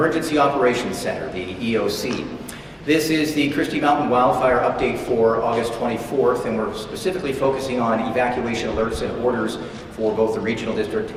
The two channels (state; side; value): identical; both; correlation 1.00